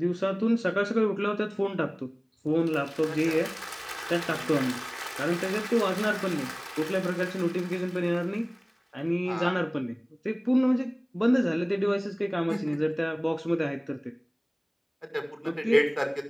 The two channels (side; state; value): both; identical; correlation 1.00